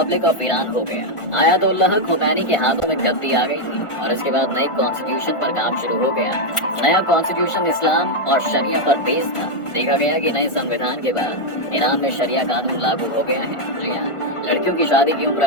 ऑफ ईरान हो गया। आयतुल्लाह खुमैनी के हाथों में गद्दी आ गई थी और इसके बाद नए कॉन्स्टिट्यूशन पर काम शुरू हो गया। नया कॉन्स्टिट्यूशन इस्लाम और शरिया पर बेस था। देखा गया कि नए संविधान के बाद ईरान में शरिया कानून लागू हो गया है। जी हाँ, लड़कियों की शादी की उम्र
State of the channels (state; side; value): late; right; 1.4 ms